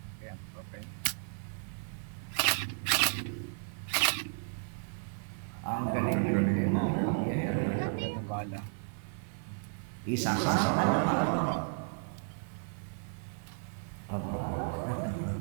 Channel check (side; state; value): left; silent; 55 dB below the other